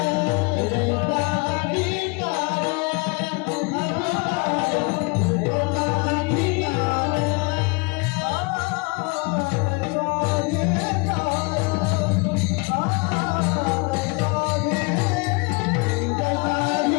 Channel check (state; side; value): quieter; right; 29.9 dB